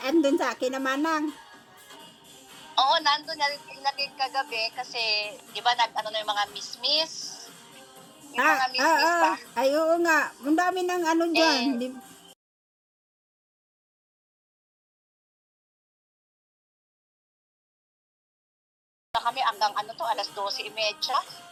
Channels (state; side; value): identical; both; correlation 1.00